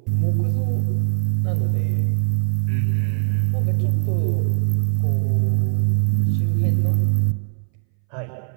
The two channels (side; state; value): left; silent; 63 dB below the other